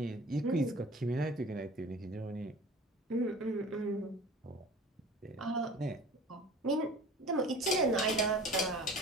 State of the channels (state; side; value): normal; both; correlation 0.42